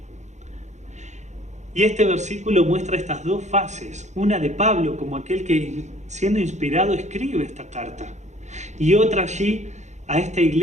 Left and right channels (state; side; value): late; left; 0.34 ms